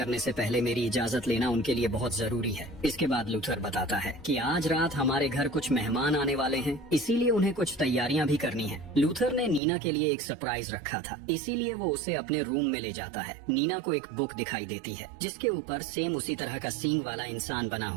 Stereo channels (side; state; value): left; drops out; at 9.6 s